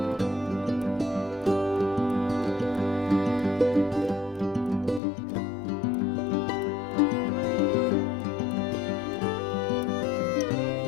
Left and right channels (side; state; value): right; drops out; at 5.0 s